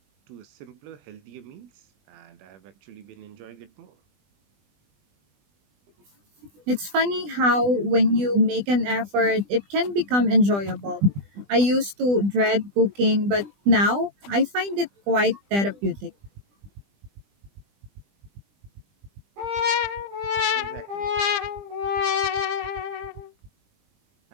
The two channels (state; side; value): late; left; 20 ms